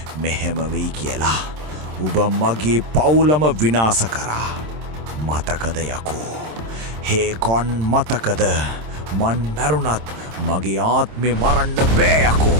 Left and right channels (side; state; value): left; late; 26 ms